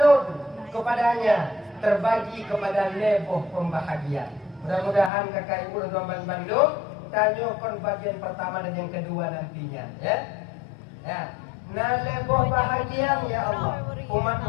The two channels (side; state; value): right; drops out; at 5.1 s